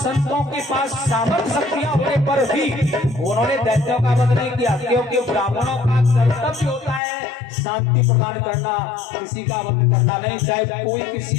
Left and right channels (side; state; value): right; drops out; at 7.0 s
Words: के पास सामर्थ्य शक्तियां होने पर भी उन्होंने दैत्यों का वध नहीं किया, क्योंकि ब्राह्मणों का कर्तव्य होता है शांति प्रदान करना, किसी का वध करना नहीं, चाहे कोई